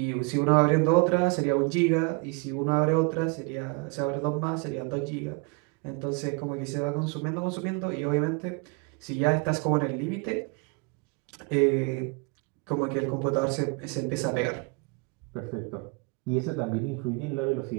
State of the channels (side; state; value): left; quieter; 29.9 dB